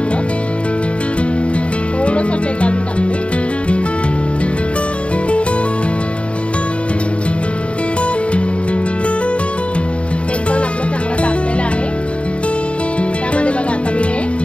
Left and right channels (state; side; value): late; right; 0.060 ms